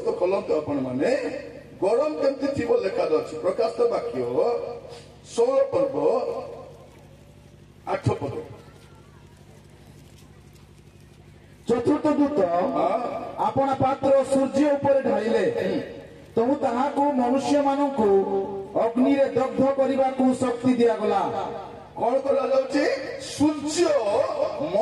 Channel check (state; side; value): identical; both; correlation 1.00